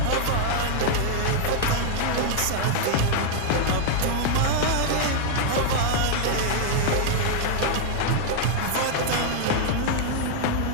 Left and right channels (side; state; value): both; different; correlation 0.00